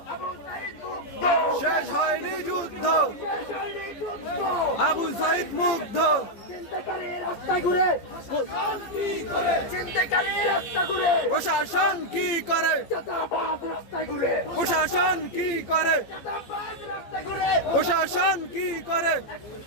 শেষ হয়নি যুদ্ধ, আবু সাইদ মুগ্ধ। প্রশাসন কি করে, প্রশাসন কি করে, প্রশাসন কি করে?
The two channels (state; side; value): late; right; 14 ms